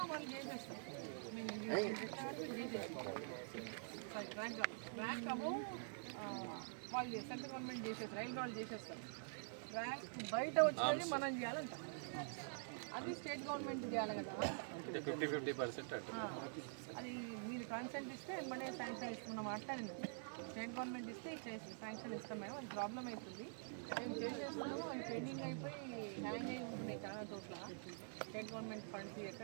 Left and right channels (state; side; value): silent; left; digital silence